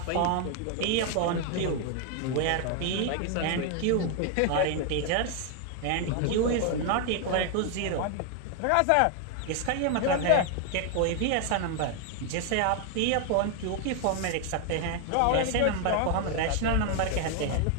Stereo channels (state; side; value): different; both; correlation 0.00